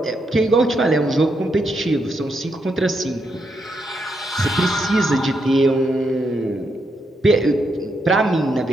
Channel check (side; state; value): both; normal; correlation 0.80